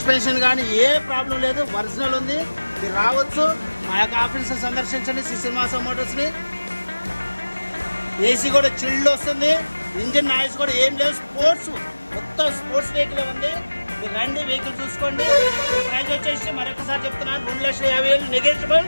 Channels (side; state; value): both; inverted; correlation -1.00